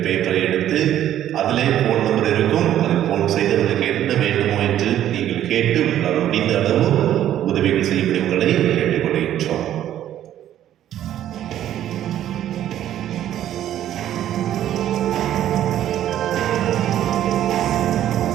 பேப்பரை எடுத்து அதிலே ஃபோன் நம்பர் இருக்கும். அதை ஃபோன் செய்து அவர்களுக்கு என்ன வேண்டுமோ என்று நீங்கள் கேட்டு உங்களால் முடிந்த அளவு உதவிகள் செய்யப்படி உங்களை கேட்டுக்கொள்கின்றோம்.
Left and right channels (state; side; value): quieter; left; 11.7 dB